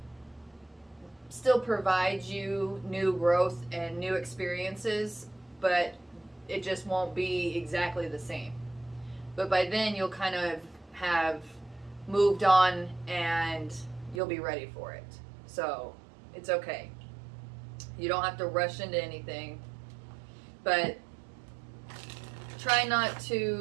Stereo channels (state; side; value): drops out; left; at 14.2 s